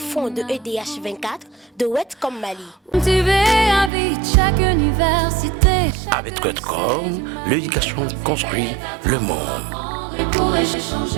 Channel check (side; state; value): left; drops out; at 3.9 s